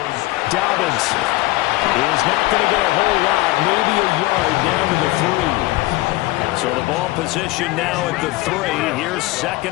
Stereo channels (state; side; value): quieter; right; 19.4 dB